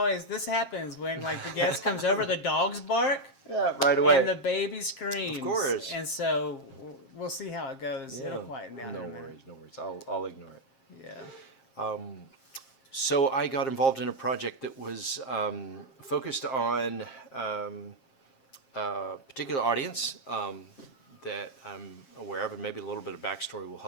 happens when like the guest comes over. The dogs bark, Yeah, right away. and the baby screams. Of course. And so we'll see how it goes. Yeah. It'll quieten down. No in a minute. worries, no worries. I'll ignore it. Yeah. So I got involved in a project that was focused on a particular audience that I'm aware of, and maybe a little bit of backstory will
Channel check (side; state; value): right; late; 7.5 ms